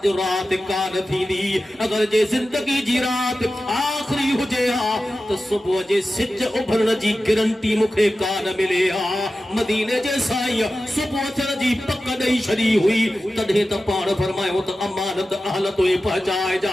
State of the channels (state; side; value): normal; both; correlation 0.94